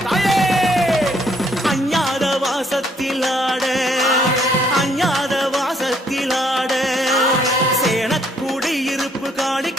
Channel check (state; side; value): normal; both; correlation 0.67